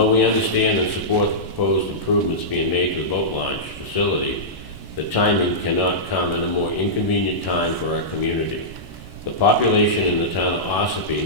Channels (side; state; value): right; late; 1.1 ms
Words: we understand and support the proposed improvements being made to the boat launch facility, the timing cannot come at a more inconvenient time for our community. The population in the town of